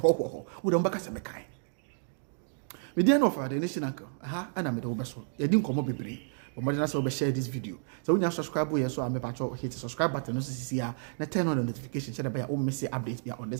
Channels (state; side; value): silent; left; digital silence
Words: wo dem baka se mekai me dey no for the nation uncle aha ana me dey wo beso ye di nkomo bebre but mo dey na say we share this video so when you subscribe here so am me patcho hit the subscribe button no sisi ya na turn on the notification so that by o miss updates be on